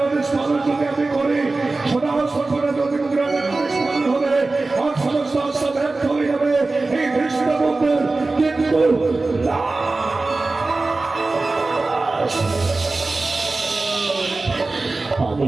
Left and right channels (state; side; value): quieter; left; 3.4 dB